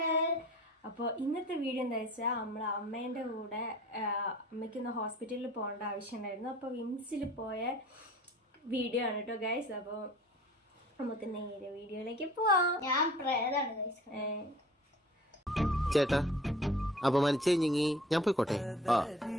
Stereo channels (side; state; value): both; normal; correlation 0.47